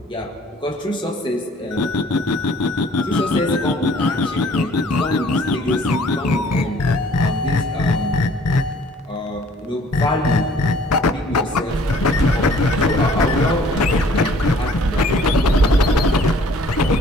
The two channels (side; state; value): both; normal; correlation 0.55